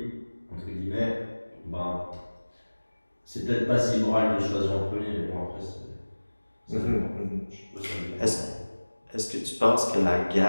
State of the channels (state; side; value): inverted; both; correlation -1.00